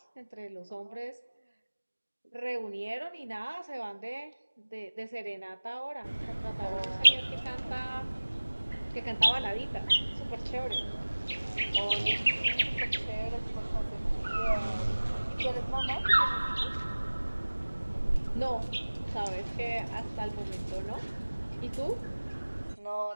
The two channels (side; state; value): both; inverted; correlation -1.00